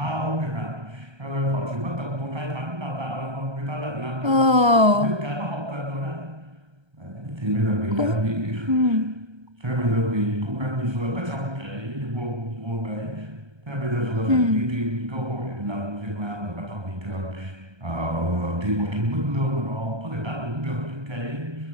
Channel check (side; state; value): left; late; 1.3 ms